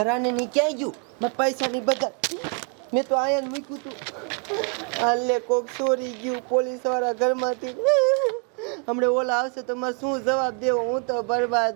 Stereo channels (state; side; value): quieter; left; 37.1 dB